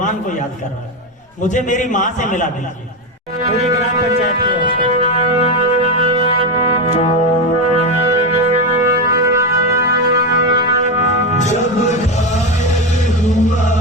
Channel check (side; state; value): both; normal; correlation 0.13